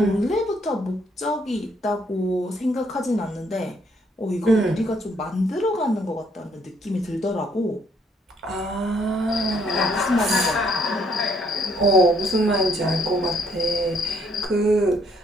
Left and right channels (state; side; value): normal; both; correlation 0.68